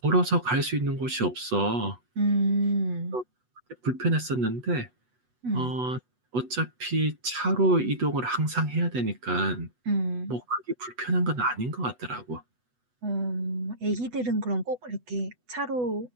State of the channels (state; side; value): late; left; 8.1 ms